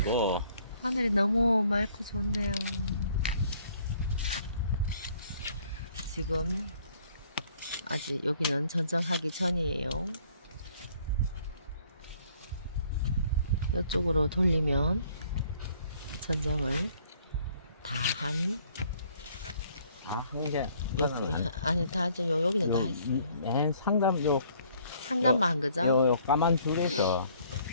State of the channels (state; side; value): inverted; both; correlation -0.61